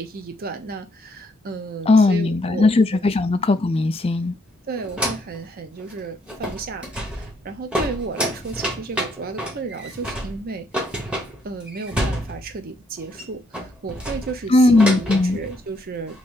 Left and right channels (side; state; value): both; normal; correlation 0.72